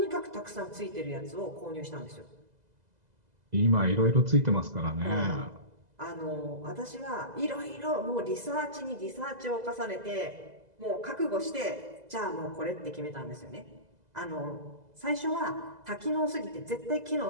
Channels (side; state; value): left; late; 2.0 ms